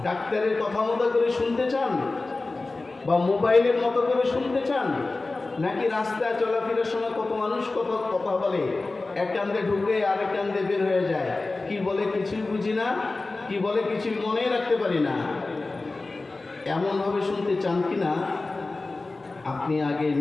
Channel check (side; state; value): right; quieter; 3.4 dB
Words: ডাক্তারের কথা মতো করে শুনতে চান, বা মোবাইলের মতো করে শুনতে চান, নাকি রাস্তায় চলাফেরার সময় কত মানুষ কত কথা বলে, এক কান্দে ঢুকে আরেক কান্দে বের হয়ে যায়, কি বলে কিছুই বুঝি না, কি বলে কিছুই মনে রাখতে পারি না। এমনভাবে শুনতে চান কি না আপনি আগে